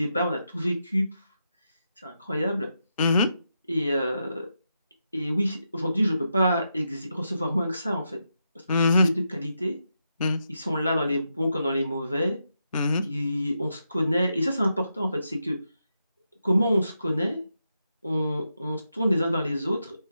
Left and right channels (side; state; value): both; inverted; correlation -0.85